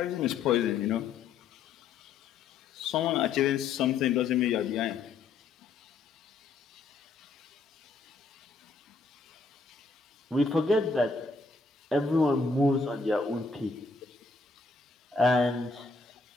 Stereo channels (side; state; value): right; quieter; 4.3 dB